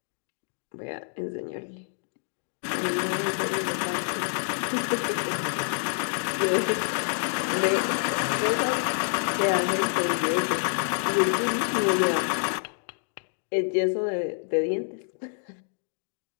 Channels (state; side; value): silent; right; digital silence